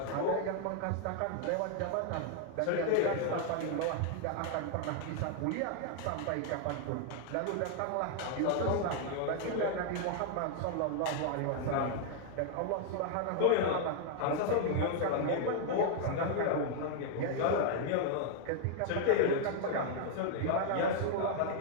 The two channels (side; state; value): both; different; correlation 0.00